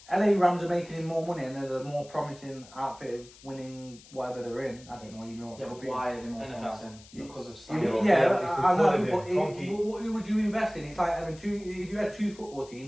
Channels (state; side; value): noise; left; hiss, 22 dB below the sound